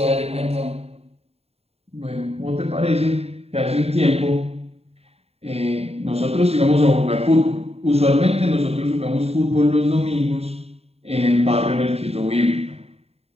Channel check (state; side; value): late; left; 0.30 ms